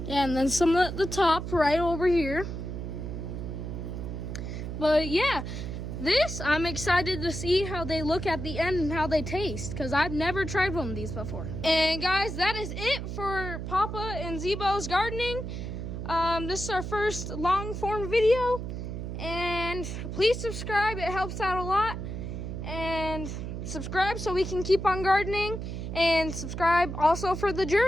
Yeah, and then some at the top right over here. But yeah, I'm excited to see how they look at the end and how they taste, because I've never tried one of these before. And guys, that is it for Papa and Zebo's gardening. This is our first long form video, and please subscribe. It helps out a lot. And subscribe so we can keep on gardening, and subscribe also for the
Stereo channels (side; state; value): right; noise; hum, 6 dB below the sound